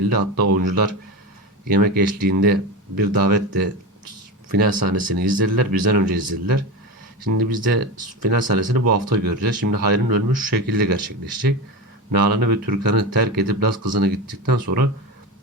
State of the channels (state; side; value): normal; both; correlation 0.22